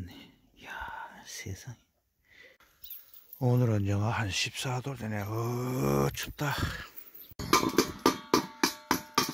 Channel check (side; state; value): both; identical; correlation 1.00